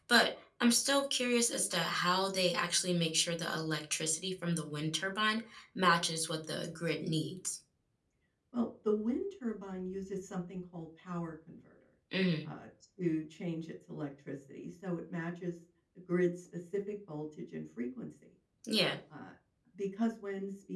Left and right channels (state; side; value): identical; both; correlation 1.00